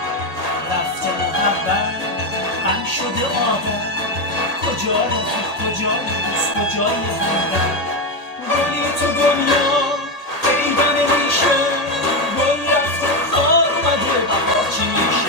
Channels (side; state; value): right; late; 1.8 ms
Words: رفته محبت غم شده آدم، کجا رفیق کجای دوست کجای همدم؟ گلی تو دنیا پیدا نمیشه، گل رفته خار اومده بهار چی